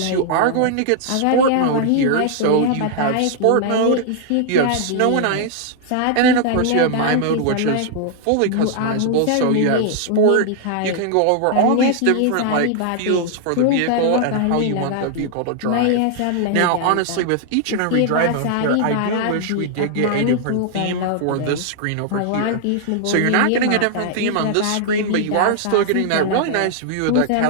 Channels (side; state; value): both; different; correlation 0.00